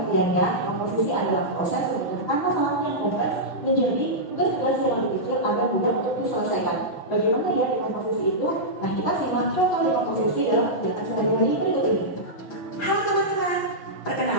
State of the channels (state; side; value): late; right; 6.0 ms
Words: komposisi adalah proses memecahkan masalah yang kompleks menjadi tugas-tugas yang lebih kecil agar mudah untuk diselesaikan. Bagaimana ya dekomposisi itu? Nah, kita simak contoh dekomposisi dalam kegiatan sehari-hari berikut ini. Halo teman-teman,